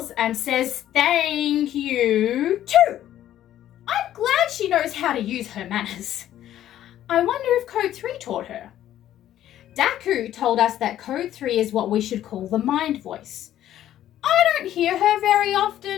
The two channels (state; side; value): quieter; right; 12.2 dB